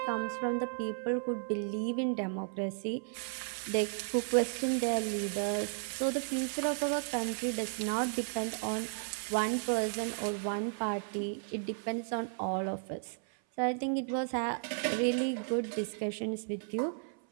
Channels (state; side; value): silent; left; 55 dB below the other